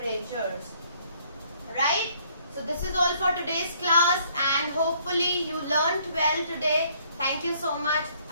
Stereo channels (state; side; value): inverted; both; correlation -0.64